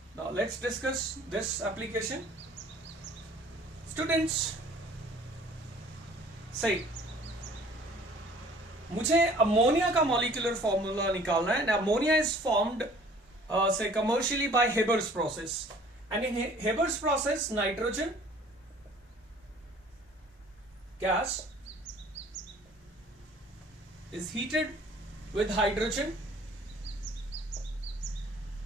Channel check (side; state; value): both; normal; correlation 0.53